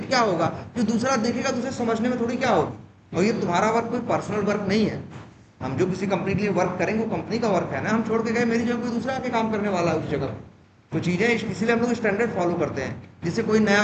क्या होगा, जो दूसरा देखेगा तो उसे समझने में थोड़ी क्या होगी। और ये तुम्हारा वर्क कोई पर्सनल वर्क नहीं है। हम जो किसी कंपनी के लिए वर्क करेंगे वो कंपनी का वर्क है ना। हम छोड़ के गए, मेरी जगह कोई दूसरा आके काम करने वाला है उस जगह। तो चीजें इसीलिए हम लोग स्टैंडर्ड फॉलो करते हैं, जिससे कोई नया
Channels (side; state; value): both; identical; correlation 1.00